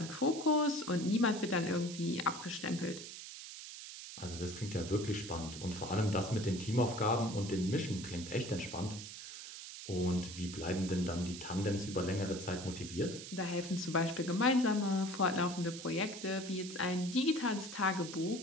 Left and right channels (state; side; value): noise; right; hiss, 11 dB below the sound